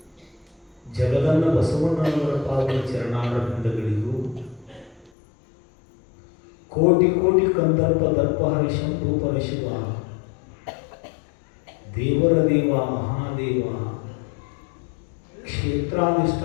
ಜಗದನ್ನ ಬಸವಣ್ಣನವರ ಪಾವನ ಚರಣಾರವಿಂದಗಳಿಗೂ ಕೋಟಿ ಕೋಟಿ ಕಂದರ್ಪ ದರ್ಪಹರ ಶಂಭು ಪರಶಿವ ದೇವರ ದೇವ ಮಹಾದೇವ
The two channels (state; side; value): drops out; right; at 5.1 s